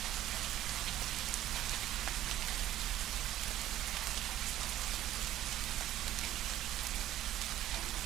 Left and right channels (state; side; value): quieter; left; 13.3 dB